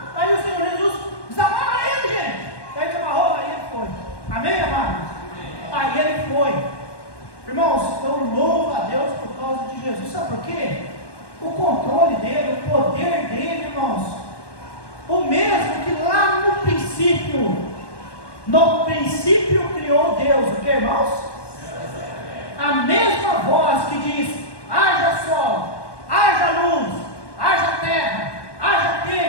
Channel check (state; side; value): late; right; 1.1 ms